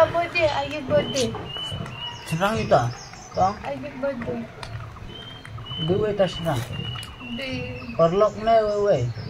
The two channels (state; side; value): identical; both; correlation 1.00